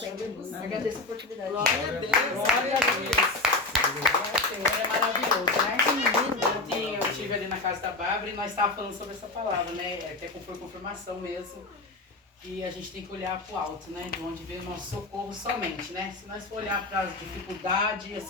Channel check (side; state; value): right; quieter; 3.2 dB